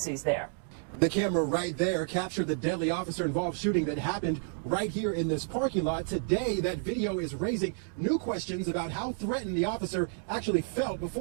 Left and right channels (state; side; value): silent; left; 57 dB below the other